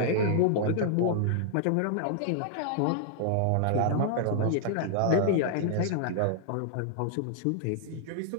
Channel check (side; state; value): both; different; correlation -0.01